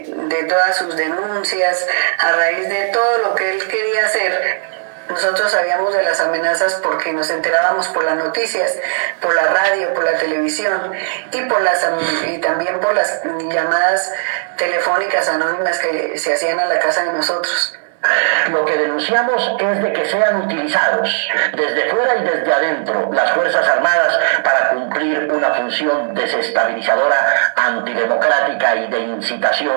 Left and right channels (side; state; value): left; silent; digital silence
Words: todas sus denuncias, a raíz de todo lo que él quería hacer. Nosotros sabíamos de las amenazas porque nos enterábamos por las noticias, por la radio, por la televisión y también por las llamadas telefónicas anónimas que se hacían a la casa de nosotros. Lo que denunciamos es de que sean utilizados desde fuera y desde adentro las Fuerzas Armadas para cumplir una función desestabilizadora, antidemocrática y de